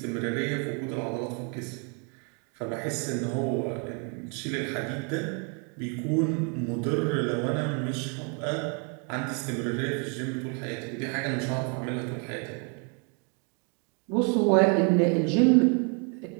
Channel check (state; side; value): quieter; left; 37.3 dB